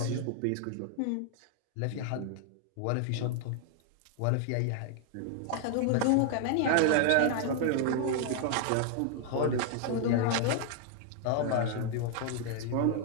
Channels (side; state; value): both; different; correlation 0.00